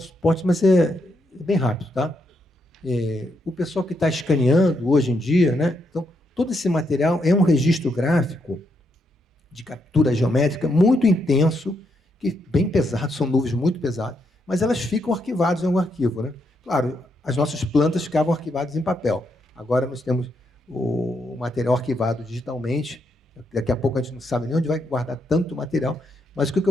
suportes, mas é bem rápido, tá? O pessoal que está escaneando hoje em dia, né? Então, todo esse material é um registro gráfico de captura geométrica muito intenso, que bem pesado, são nuvens muito pesadas, mas elas ficam arquivadas em algum arquivo, né? Claro, as nossas plantas ficavam arquivadas em papel. Agora nós temos o material arquivado digitalmente. Daqui a pouco a gente não sabe nem onde vai guardar tanto material, mas o que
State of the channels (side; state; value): both; normal; correlation 0.79